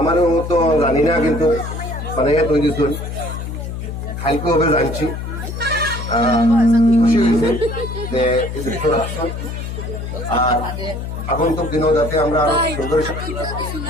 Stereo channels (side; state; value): left; noise; hum, 6 dB below the sound